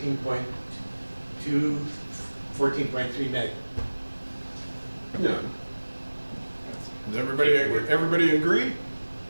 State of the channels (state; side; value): inverted; both; correlation -1.00